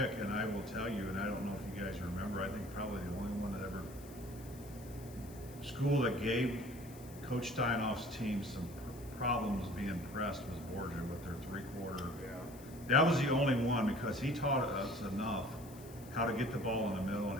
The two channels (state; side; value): noise; left; hiss, 20 dB below the sound